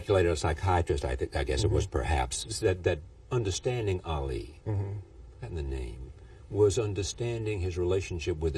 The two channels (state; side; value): identical; both; correlation 1.00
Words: a psychiatrist, I guess it was perhaps, that understanding Ali, and the name, was understanding his relationship with